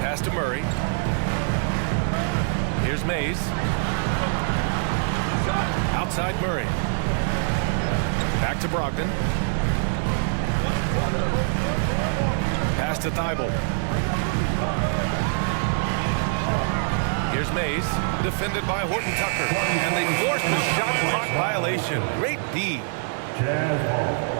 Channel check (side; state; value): left; silent; digital silence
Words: to Murray. Here's Mays. Outside Murray. Back to Brogdon. Pass to Thibault. Here's Mays, defended by Horton-Tucker. And they forced a shot clock violation. Great D. Jazz ball.